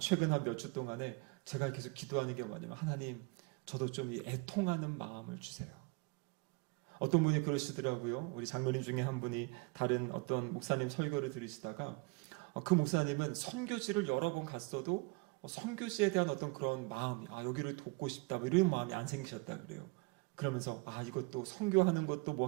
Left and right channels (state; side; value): quieter; left; 27.7 dB